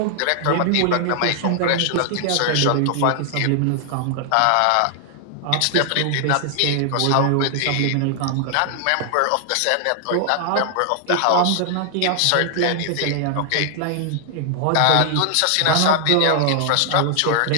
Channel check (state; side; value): different; both; correlation 0.00